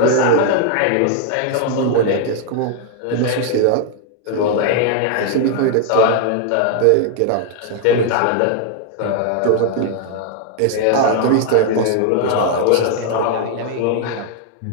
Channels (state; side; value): different; both; correlation 0.00